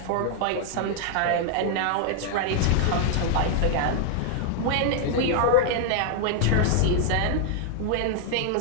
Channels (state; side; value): different; both; correlation 0.00